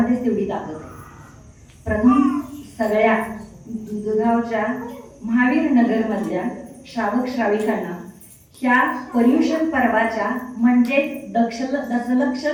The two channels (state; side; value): identical; both; correlation 1.00